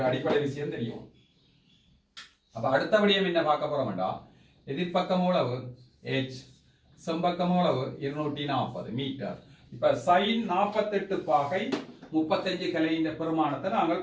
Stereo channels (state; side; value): identical; both; correlation 1.00